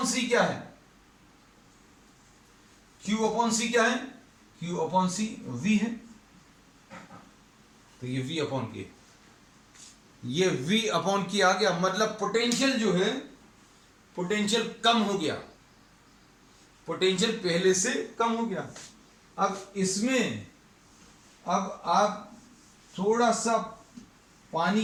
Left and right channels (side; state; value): both; identical; correlation 1.00